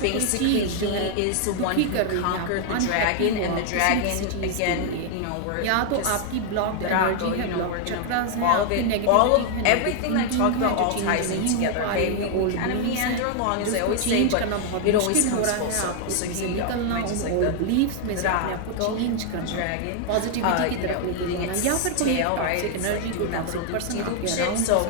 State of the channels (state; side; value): different; both; correlation 0.00